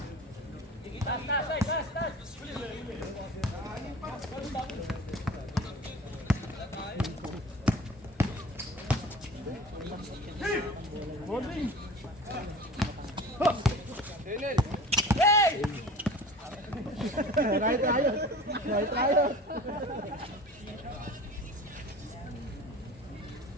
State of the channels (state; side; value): normal; both; correlation 0.39